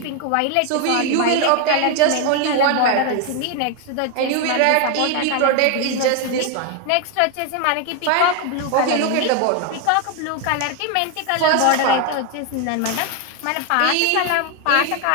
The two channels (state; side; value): different; both; correlation 0.01